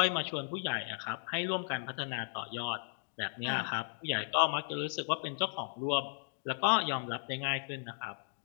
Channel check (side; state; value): right; silent; digital silence